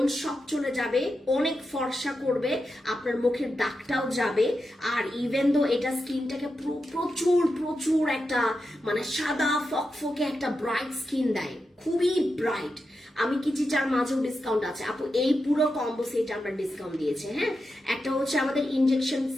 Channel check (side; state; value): both; normal; correlation 0.88